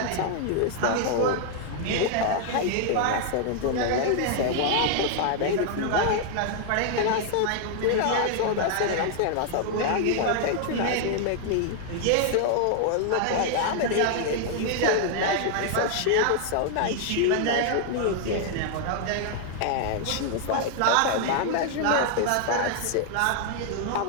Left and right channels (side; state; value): both; different; correlation 0.00